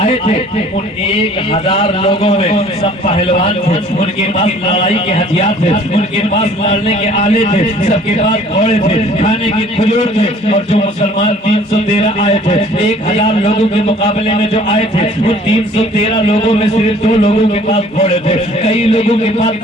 تھے ان 1000 لوگوں میں سب پہلوان تھے، ان کے پاس لڑائی کے ہتھیار تھے، ان کے پاس لڑنے کے آلے تھے، سب کے پاس گھوڑے تھے، کھانے کے کھجور تھے۔ اور جو مسلمان 313 آئے تھے 1000 لوگوں کے مقابلے میں جو آئے تھے وہ 313 لوگوں میں صرف 2 لوگوں کے پاس گھوڑے تھے، کئی لوگوں کے پاس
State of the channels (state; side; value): normal; both; correlation 0.54